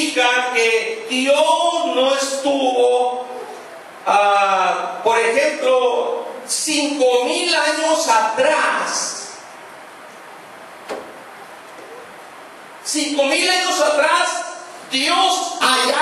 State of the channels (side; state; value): both; identical; correlation 1.00